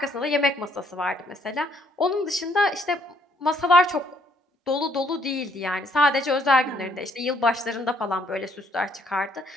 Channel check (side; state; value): both; normal; correlation 0.67